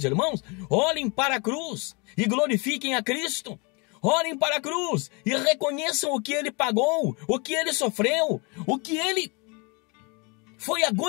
irmãos: olhem para a cruz e glorifiquem a Cristo. Olhem para a cruz e reconheçam o que ele pagou, o que ele sofreu, o que ele foi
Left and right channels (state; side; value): quieter; right; 30.6 dB